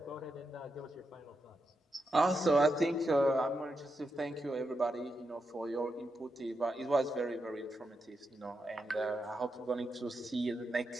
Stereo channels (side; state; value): both; normal; correlation 0.86